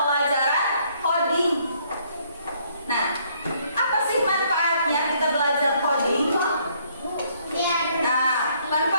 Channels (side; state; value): both; inverted; correlation -0.66